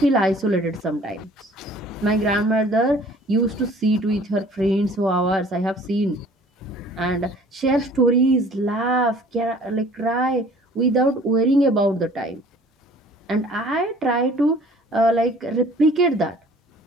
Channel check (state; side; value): normal; both; correlation 0.51